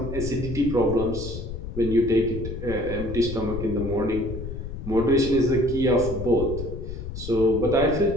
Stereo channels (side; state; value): left; noise; rumble, 7 dB below the sound